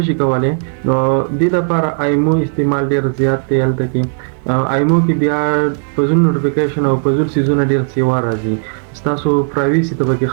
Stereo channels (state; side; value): silent; left; 59 dB below the other